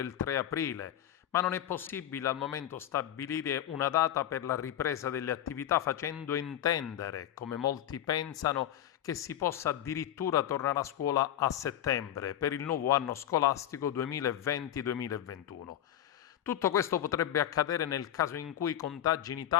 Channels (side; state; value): right; quieter; 11.4 dB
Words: 3 aprile, ma non è possibile al momento stabilire una data per la ripresa delle attività facendo intendere, come molti pensano, che si possa addirittura tornare a scuola a settembre per il nuovo anno scolastico 2020-2021. Tutto questo potrebbe accadere nel caso in cui i contagi in